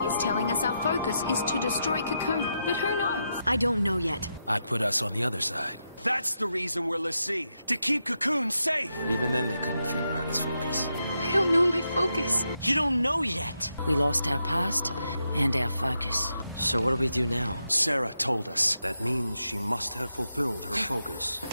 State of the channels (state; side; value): inverted; both; correlation -0.84